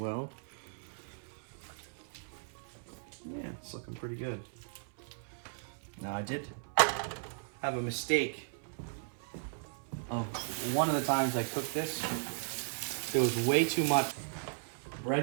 Yeah, it's looking pretty good. Now I did have a mistake. Oh, one of the times I cooked this, there was way too much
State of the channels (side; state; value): left; silent; 54 dB below the other